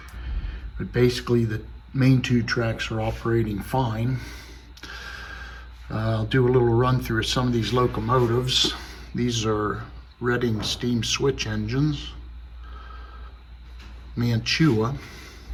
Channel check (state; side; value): identical; both; correlation 1.00